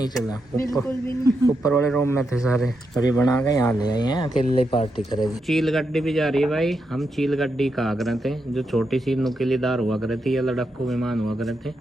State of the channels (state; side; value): normal; both; correlation 0.84